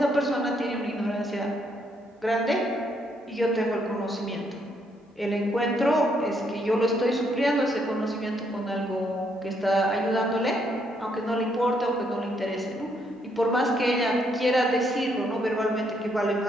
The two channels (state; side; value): normal; both; correlation 0.73